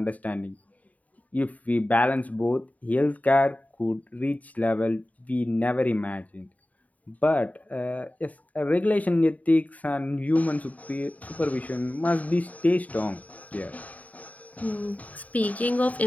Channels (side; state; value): right; late; 0.072 ms